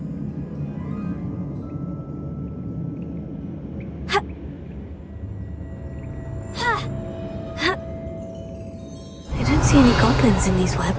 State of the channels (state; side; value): identical; both; correlation 1.00